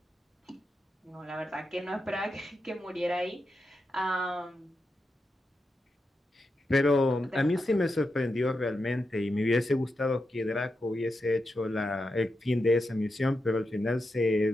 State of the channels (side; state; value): both; normal; correlation 0.88